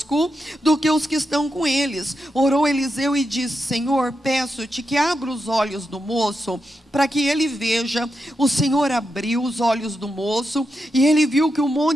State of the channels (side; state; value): both; normal; correlation 0.86